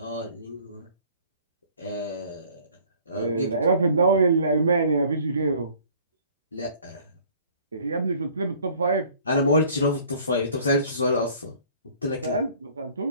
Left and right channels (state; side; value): inverted; both; correlation -0.54